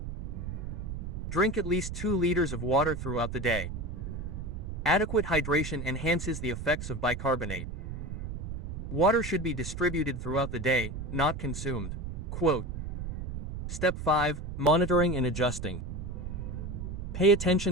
Drink at least 2 liters of water throughout the day. Adequate hydration enhances the effects of bicarbonate. Water should be distributed throughout the day, not consumed. Quote. Step 5. Monitoring and adjusting. Pay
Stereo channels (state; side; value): noise; right; rumble, 6 dB below the sound